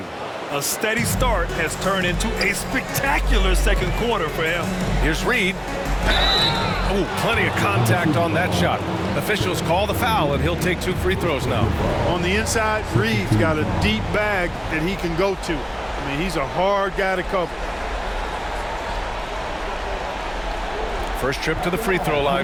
A steady start has turned into a spectacular second quarter for him. Here's Reid. Oh, plenty of contact on that shot. Officials call the foul, and he'll take 2 free throws now. On the inside, Reid's got a deep bag that he can go to. I mean, he's a hard guy to cover. First trip to the free throw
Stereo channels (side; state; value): both; identical; correlation 1.00